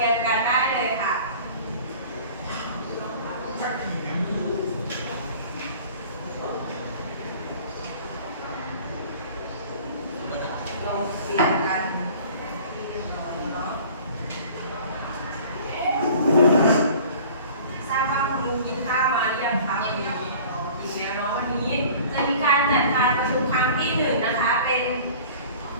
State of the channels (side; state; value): both; inverted; correlation -0.46